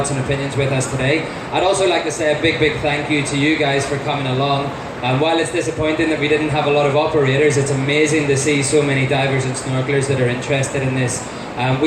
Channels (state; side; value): identical; both; correlation 1.00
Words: and opinions with us today. I'd also like to say a big, big thank you to you guys for coming along. While it's disappointing that we didn't have a lot of operators, it's amazing to see so many divers and snorkelers that are interested in this.